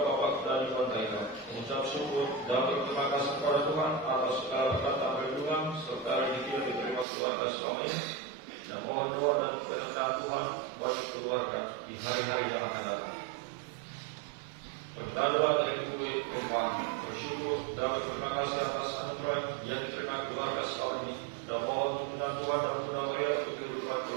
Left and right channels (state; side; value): drops out; left; at 7.1 s